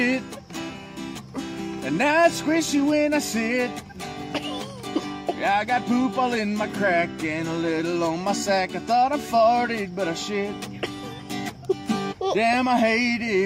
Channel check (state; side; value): identical; both; correlation 1.00